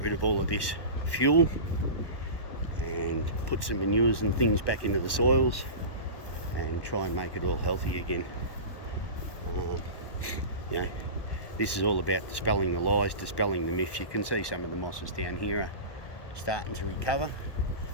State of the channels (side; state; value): right; late; 1.2 ms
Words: rid of all of this fuel and put some manures and things back into the soils and try and make it all healthy again. This is all about dispelling the lies, dispelling the myths. You can see some of the mosses down here are starting to recover,